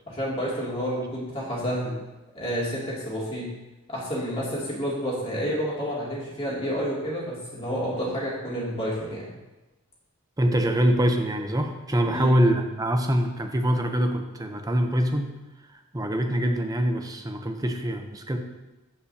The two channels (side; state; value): both; normal; correlation 0.72